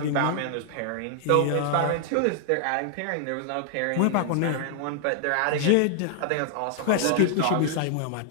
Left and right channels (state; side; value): different; both; correlation 0.00